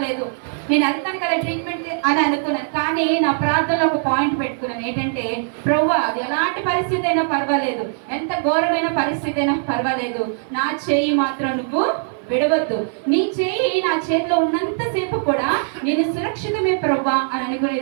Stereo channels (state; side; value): silent; left; 57 dB below the other